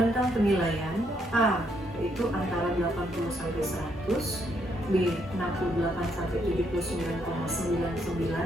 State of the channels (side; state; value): both; normal; correlation 0.74